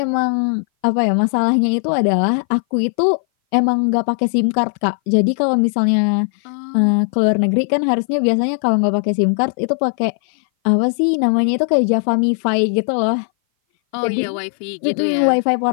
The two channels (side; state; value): right; silent; 58 dB below the other